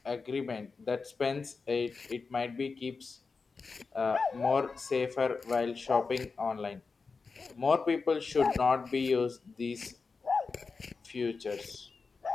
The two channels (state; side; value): quieter; right; 4.6 dB